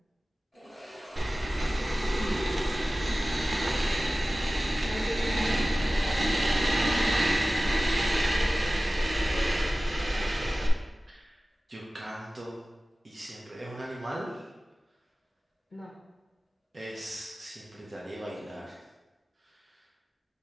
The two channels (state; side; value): normal; both; correlation 0.97